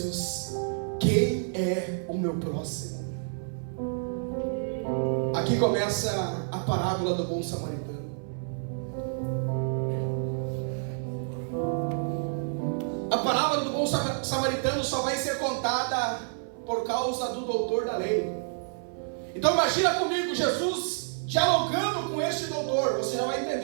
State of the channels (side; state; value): left; silent; 59 dB below the other